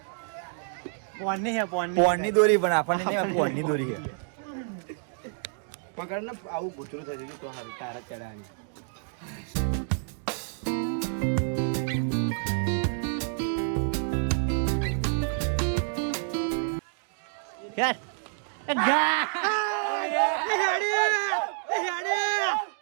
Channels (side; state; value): left; silent; digital silence